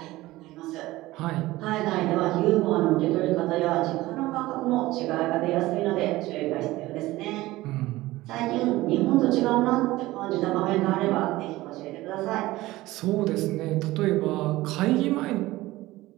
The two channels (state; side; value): quieter; left; 18.1 dB